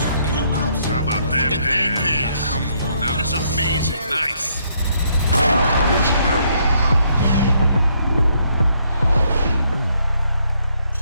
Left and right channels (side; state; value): both; inverted; correlation -0.72